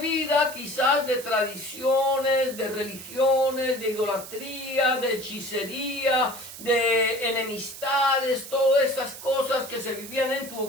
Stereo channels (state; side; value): noise; right; hiss, 13 dB below the sound